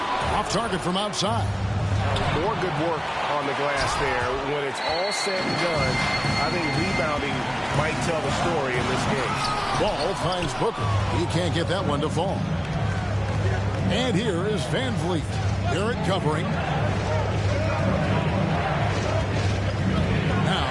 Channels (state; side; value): identical; both; correlation 1.00